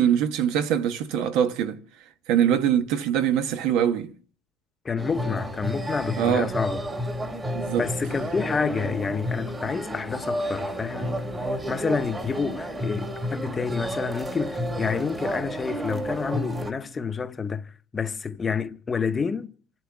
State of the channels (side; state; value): both; normal; correlation 0.60